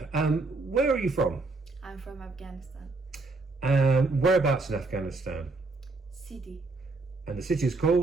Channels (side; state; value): left; quieter; 3.6 dB